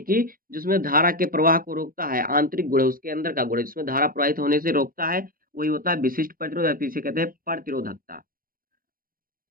कि जिसमें धारा के प्रवाह को रोकता है, आंतरिक गुण है उसके अंदर का गुण है जिसमें धारा प्रवाहित होने से रोकता है, वही होता है विशिष्ट प्रतिरोध या फिर इसे कहते हैं प्रतिरोधकता।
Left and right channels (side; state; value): left; late; 0.42 ms